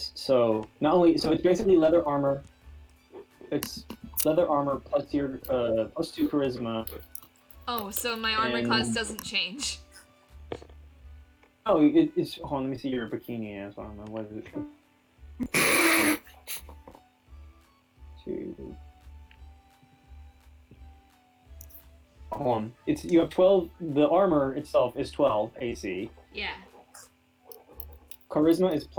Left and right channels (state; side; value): identical; both; correlation 1.00